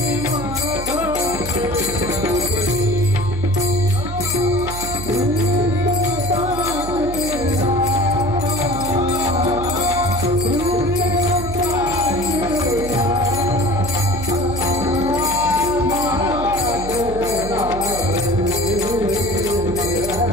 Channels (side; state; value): right; noise; hum, 9 dB below the sound